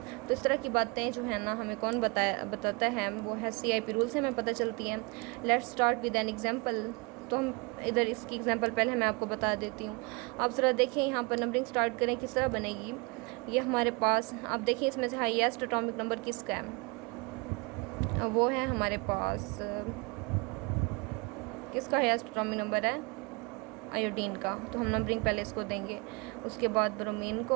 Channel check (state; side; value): quieter; left; 28.6 dB